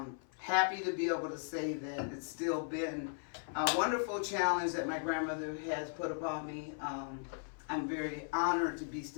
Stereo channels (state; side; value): silent; right; 53 dB below the other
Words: Happy to be able to say that it's still been a wonderful challenge that my grandmother has put upon me. I'm very honored to be